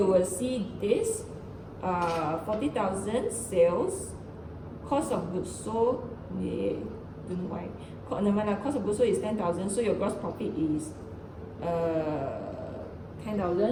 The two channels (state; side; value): identical; both; correlation 1.00